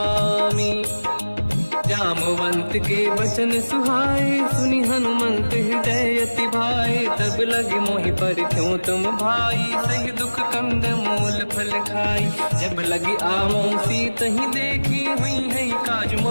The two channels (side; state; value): both; inverted; correlation -1.00